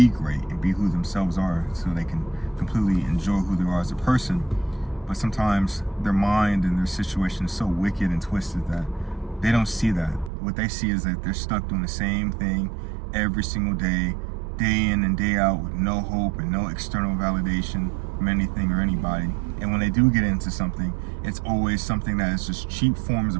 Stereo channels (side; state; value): left; drops out; at 10.3 s